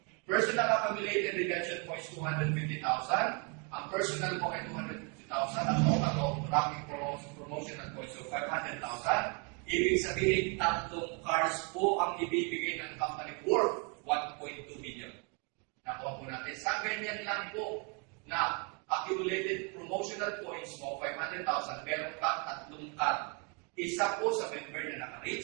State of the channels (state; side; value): quieter; left; 34.0 dB